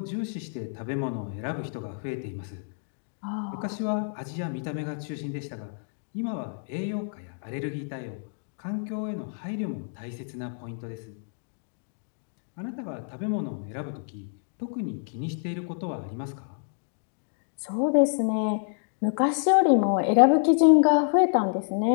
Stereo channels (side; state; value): right; silent; digital silence